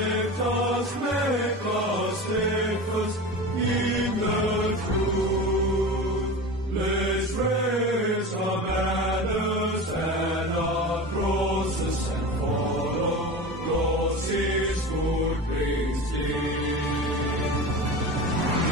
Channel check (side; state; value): both; normal; correlation 0.30